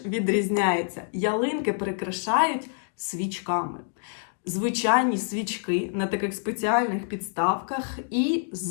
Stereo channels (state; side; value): silent; right; digital silence